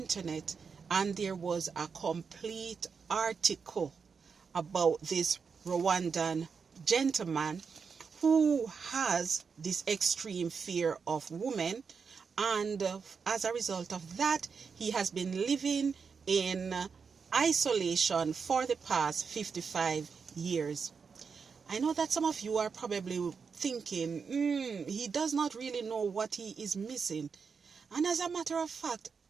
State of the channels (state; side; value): quieter; left; 5.7 dB